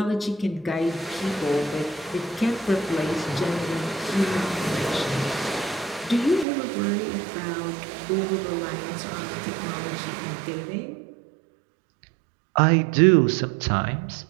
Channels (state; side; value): drops out; left; at 6.5 s